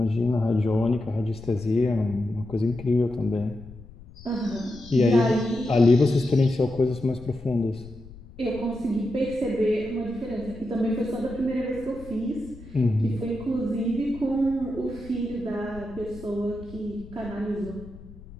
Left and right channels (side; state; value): left; noise; rumble, 18 dB below the sound